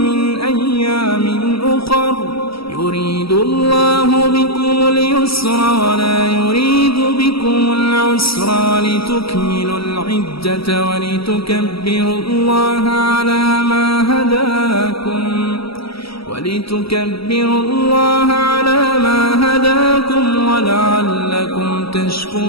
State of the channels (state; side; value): late; right; 0.76 ms